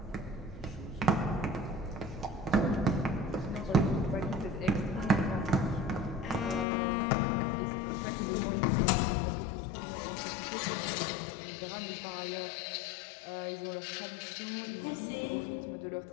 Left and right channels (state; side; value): drops out; right; at 6.7 s